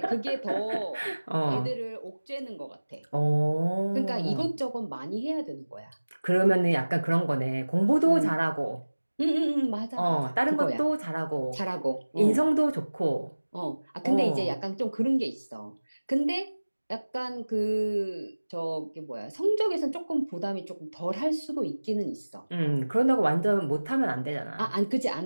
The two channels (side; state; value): both; inverted; correlation -1.00